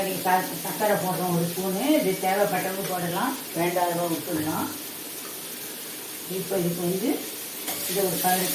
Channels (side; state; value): both; identical; correlation 1.00